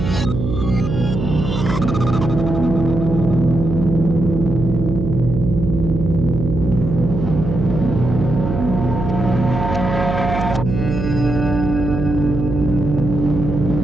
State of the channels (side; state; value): right; noise; hum, 3 dB below the sound